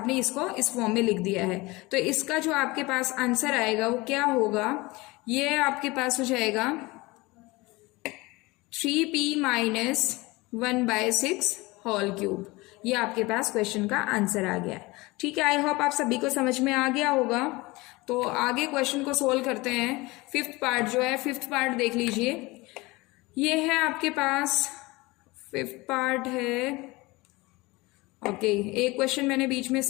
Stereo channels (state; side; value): quieter; right; 22.7 dB